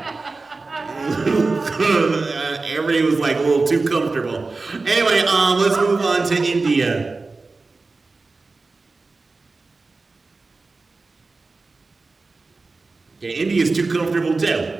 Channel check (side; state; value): left; quieter; 3.8 dB